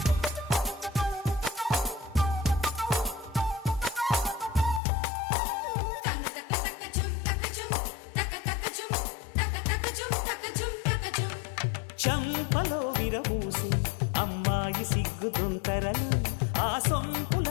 చంపలో విరబూసి అమ్మాయి సిగ్గుదొంతరలు ఆ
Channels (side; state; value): right; drops out; at 4.8 s